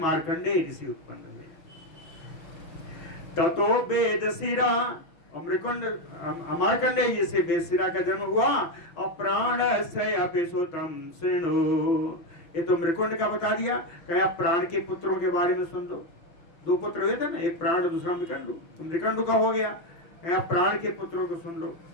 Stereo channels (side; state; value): right; late; 6.3 ms